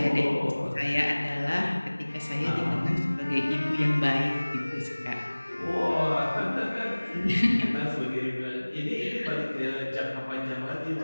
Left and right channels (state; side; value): inverted; both; correlation -1.00